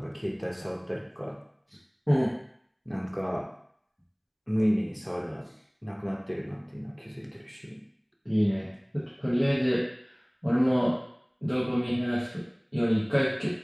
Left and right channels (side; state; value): both; identical; correlation 1.00